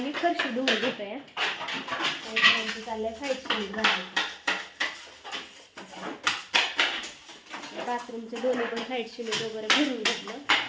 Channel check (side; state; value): both; identical; correlation 1.00